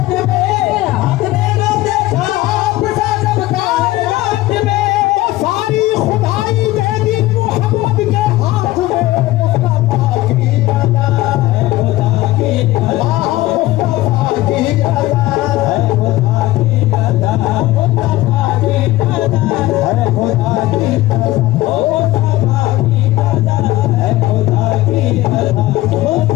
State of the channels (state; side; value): quieter; right; 17.2 dB